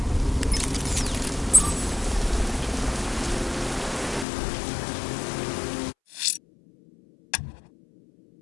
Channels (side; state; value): right; drops out; at 4.2 s